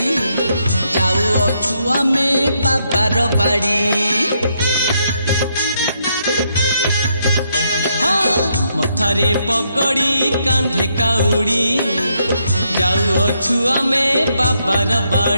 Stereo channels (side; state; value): both; inverted; correlation -0.76